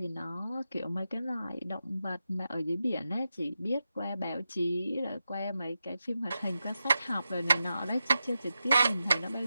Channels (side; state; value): both; inverted; correlation -0.90